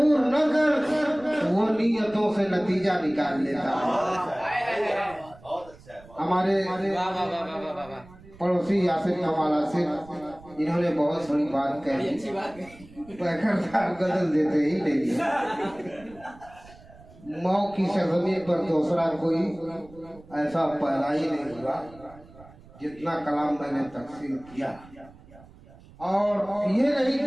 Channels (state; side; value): noise; right; rumble, 22 dB below the sound